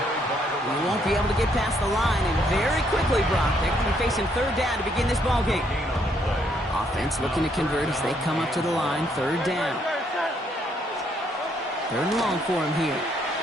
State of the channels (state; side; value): normal; both; correlation 0.71